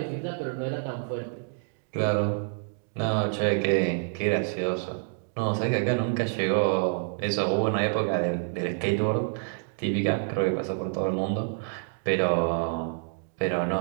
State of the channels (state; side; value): silent; left; digital silence